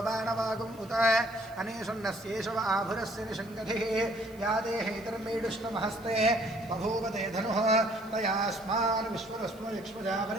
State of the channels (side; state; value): left; noise; hiss, 24 dB below the sound